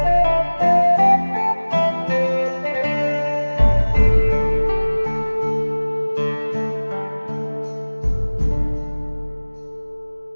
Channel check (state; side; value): inverted; both; correlation -1.00